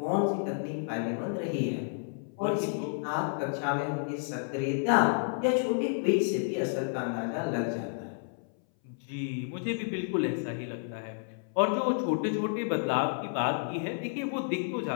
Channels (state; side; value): silent; right; 57 dB below the other